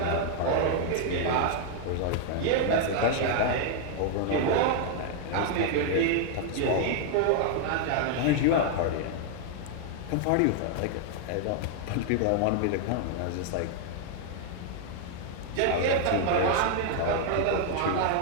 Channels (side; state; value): both; different; correlation 0.00